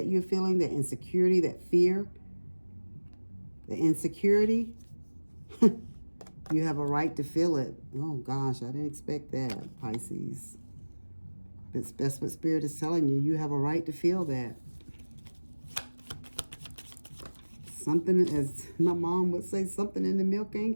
you're feeling, the insecurity, that fear, the insecurity, you have a right to feel it. Oh gosh, I didn't expect that, Pisces. That's what Spirit is telling you. You have a right to feel that. Something, as my mom would say, something in the milk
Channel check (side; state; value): both; inverted; correlation -1.00